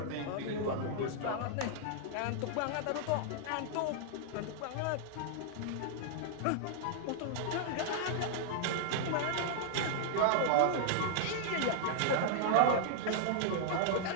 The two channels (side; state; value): both; different; correlation -0.01